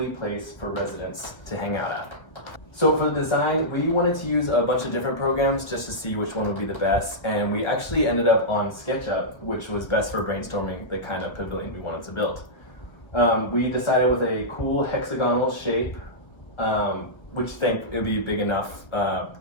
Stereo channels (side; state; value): right; late; 1.1 ms